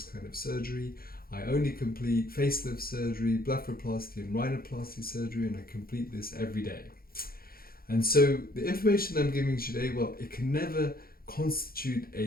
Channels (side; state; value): right; late; 0.43 ms